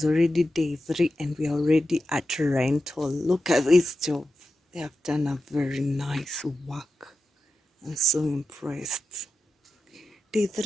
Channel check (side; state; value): both; normal; correlation 0.92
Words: already day 3 and we are already at rental. Look at this job. They have done a very nice work. I'm so impressed. Day